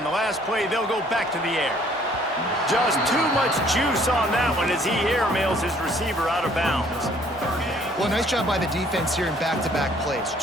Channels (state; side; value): normal; both; correlation 0.60